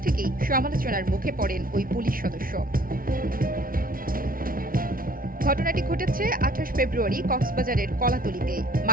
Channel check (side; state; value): left; late; 0.42 ms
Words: থেকেই সমালোচনার মুখে পড়েন ওই পুলিশ সদস্য। ঘটনাটি ঘটেছে 28 ফেব্রুয়ারি কক্সবাজারের কলাতলিতে।